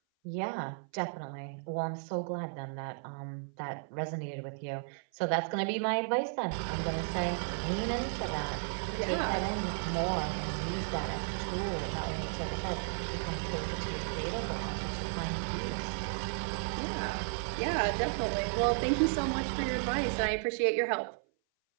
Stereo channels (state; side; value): silent; left; 55 dB below the other